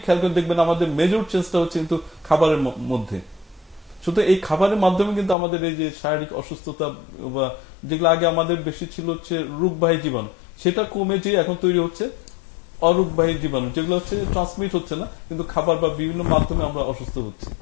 খেয়াল করে দেখবেন, আমাদের মেজর চেঞ্জটা হচ্ছে কিন্তু খাবারের মধ্যে। শুধু এই খাবারের মাধ্যমে কিন্তু আমাদের এই যে শারীরিক অসুস্থতা বা যেগুলো আগে আমাদের বেশি ছিল হচ্ছে রোগবাহী জীবাণু, সেটা কমে যে এখন তৈরি হচ্ছে অরোগবাহী জীবাণু, যেগুলো হচ্ছে ট্রান্সমিট হচ্ছে না, কিন্তু খাবার বা বিভিন্ন মাধ্যমে আমরা অসুস্থ হচ্ছি।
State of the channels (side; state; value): right; drops out; at 5.4 s